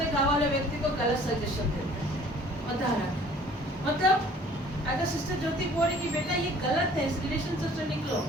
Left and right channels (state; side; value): normal; both; correlation 0.53